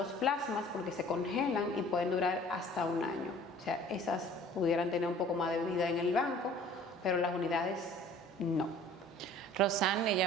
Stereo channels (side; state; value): both; normal; correlation 0.50